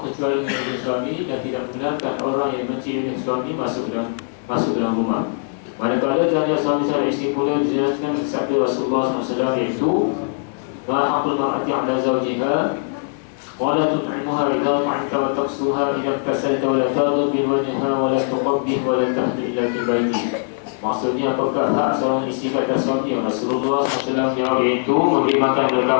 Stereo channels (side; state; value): right; silent; 65 dB below the other